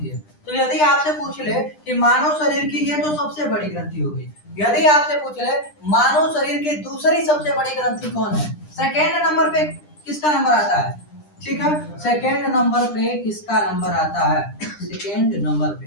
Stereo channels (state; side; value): late; right; 9.9 ms